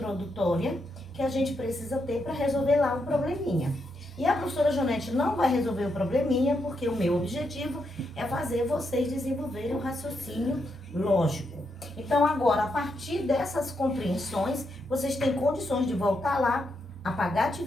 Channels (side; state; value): both; normal; correlation 0.81